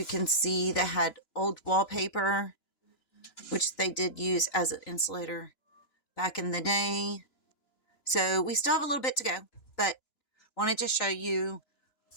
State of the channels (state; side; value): late; right; 2.9 ms